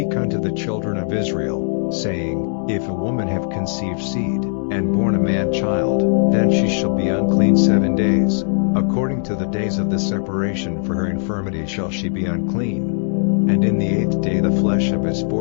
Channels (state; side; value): silent; right; 55 dB below the other